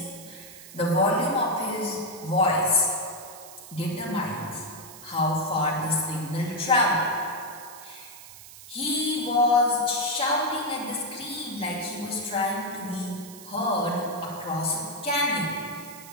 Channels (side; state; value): right; noise; hiss, 16 dB below the sound